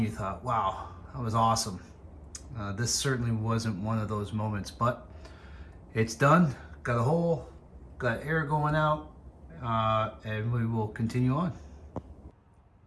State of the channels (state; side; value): identical; both; correlation 1.00